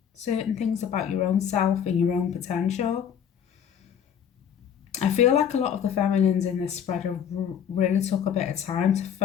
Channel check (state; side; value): quieter; right; 8.5 dB